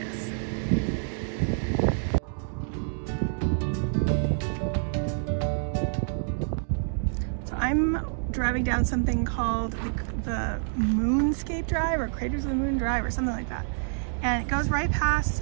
I'm driving down something called the Moonscape Drive or Craters of the Moon Drive or something like that. And it goes right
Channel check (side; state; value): left; silent; digital silence